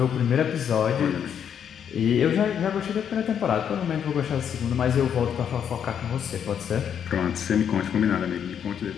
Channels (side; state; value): right; quieter; 8.4 dB